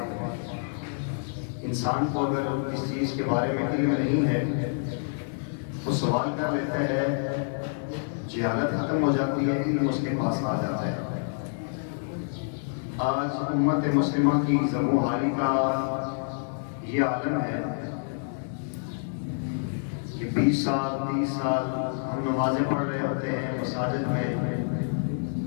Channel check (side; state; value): right; silent; digital silence